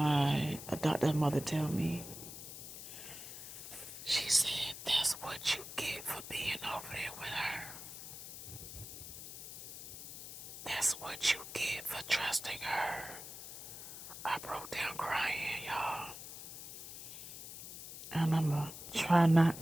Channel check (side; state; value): left; noise; hiss, 11 dB below the sound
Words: adoptive mother tell me. She said, that's what you get for being over there with her. That's what you get for trusting her. I broke down crying, y'all. And I'm going to try